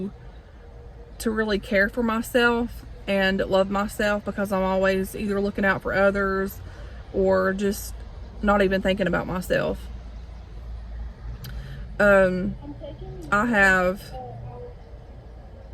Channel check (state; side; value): identical; both; correlation 1.00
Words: really care for myself and love myself, because I'm always either looking out for others or just not even thinking about myself. I have